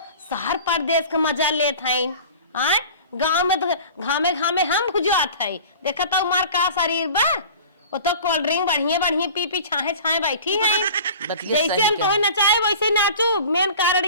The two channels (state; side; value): inverted; both; correlation -0.41